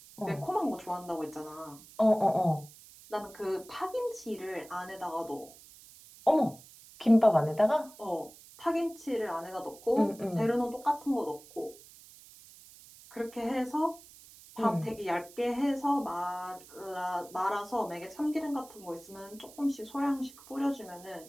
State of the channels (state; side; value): noise; right; hiss, 21 dB below the sound